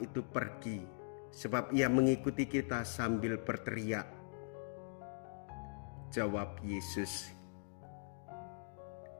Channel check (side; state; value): right; silent; digital silence